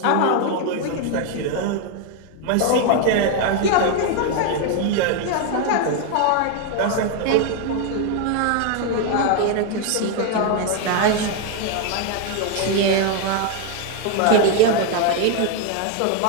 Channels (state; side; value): different; both; correlation 0.01